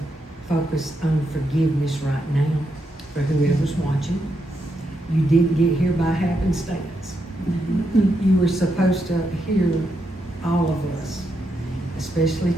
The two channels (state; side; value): normal; both; correlation 0.82